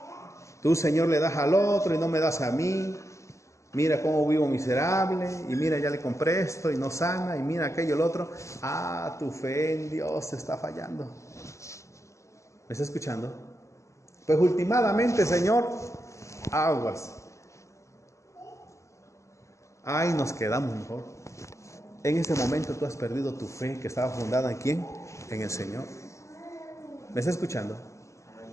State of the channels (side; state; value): right; late; 0.14 ms